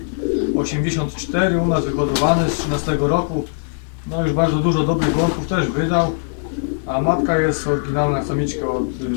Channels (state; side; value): silent; right; digital silence